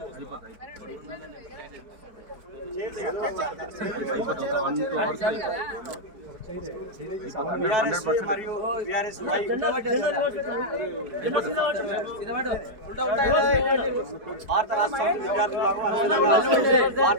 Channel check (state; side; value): late; left; 4.6 ms